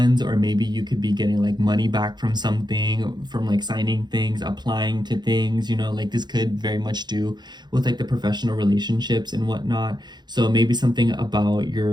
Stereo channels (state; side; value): late; left; 0.21 ms